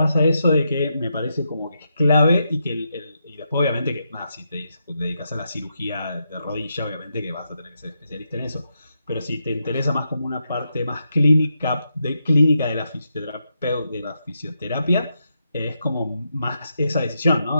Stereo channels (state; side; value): inverted; both; correlation -0.83